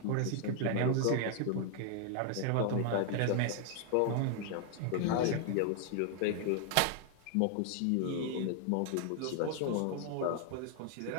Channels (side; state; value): both; different; correlation 0.00